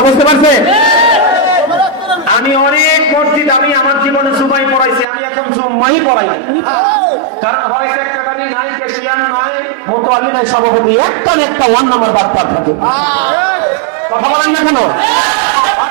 বুঝতে পারছে? আমি অনেক মসজিদ, আমি আমার জীবনে জুমাই পড়াইছি, আমি এখন জুম্মাই পড়াই না, কারণ হয় সেক্রেটারি নাই, ক্যাশিয়ার নাই, মোতালি নাই, সভাপতি একটা না একটা ওয়ান নাম্বার বাটপার থাকে। কথা বলেন না কেন?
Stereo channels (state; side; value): drops out; left; at 5.1 s